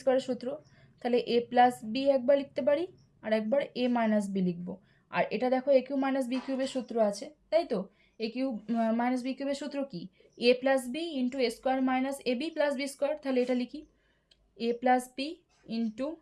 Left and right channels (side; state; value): both; identical; correlation 1.00